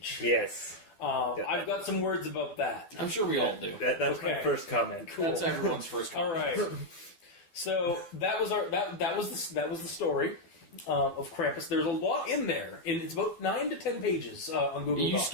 Yes. I've got some words about that. I'm sure we all do. That's Okay. my first comment. Cool. That's everyone's first comment. All right. So that was the story of Krampus. There's a lot in there. It's about 9 to 10 pages on Google You Docs.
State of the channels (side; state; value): right; late; 12 ms